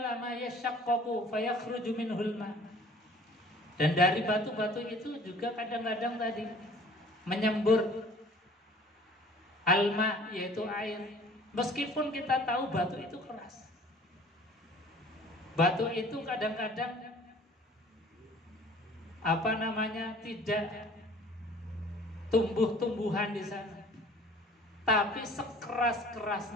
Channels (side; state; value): both; normal; correlation 0.50